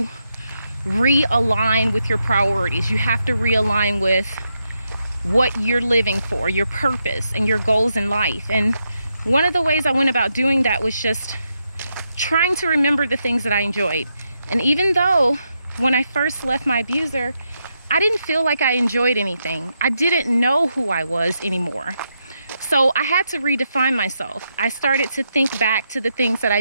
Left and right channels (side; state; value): both; inverted; correlation -0.83